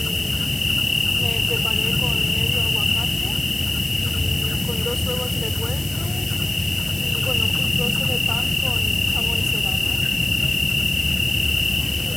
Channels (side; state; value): left; noise; hiss, 16 dB below the sound